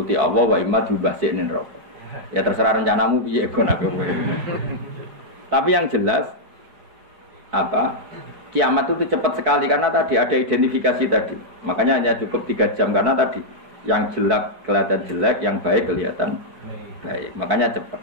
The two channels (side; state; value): left; late; 4.6 ms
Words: Allah wa imma diubahsine neraka. Ya terserah rencanamu piye kon aku. Tapi yang jelas apa? Kiamat itu cepat sekali karena tadi ada identifikasi tadi. Makanya hanya cukup 3 jam karena tadi yang jelek kelihatan jelek, yang baik kelihatan baik. Makanya cepat.